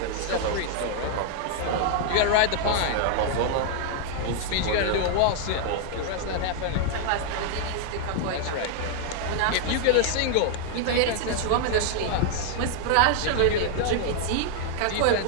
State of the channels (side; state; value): both; different; correlation 0.00